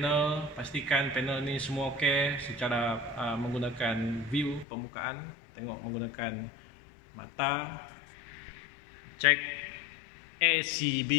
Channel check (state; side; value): drops out; right; at 4.7 s